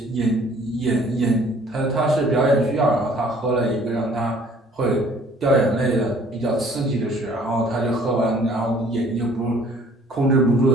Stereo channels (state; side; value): normal; both; correlation 0.56